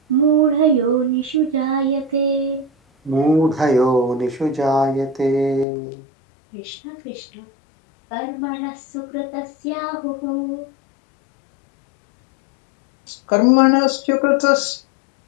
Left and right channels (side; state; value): right; drops out; at 5.7 s